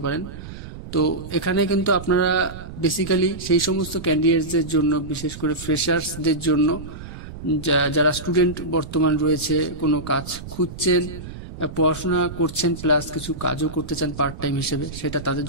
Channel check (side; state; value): right; noise; rumble, 12 dB below the sound